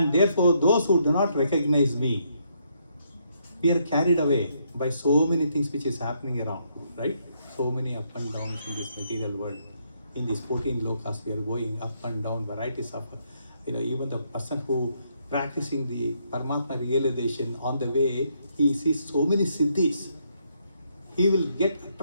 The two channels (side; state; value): both; inverted; correlation -0.74